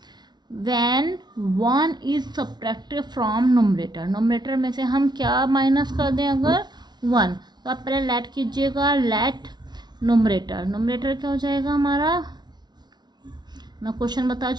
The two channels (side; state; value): left; late; 0.20 ms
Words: when 1 is subtracted from numerator में से हम क्या माइनस कर दें, अगर 1. तो आप पहले लेट कीजिएगा. लेट नोमरेटर क्या हो जाएगा हमारा, मैं क्वेश्चन बता